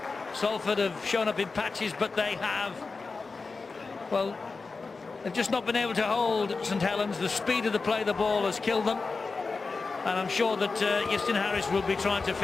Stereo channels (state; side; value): quieter; right; 4.2 dB